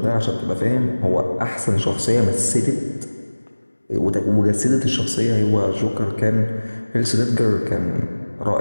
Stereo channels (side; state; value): both; inverted; correlation -1.00